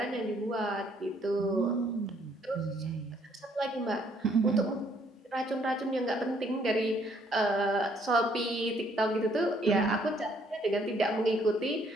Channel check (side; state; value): both; normal; correlation 0.66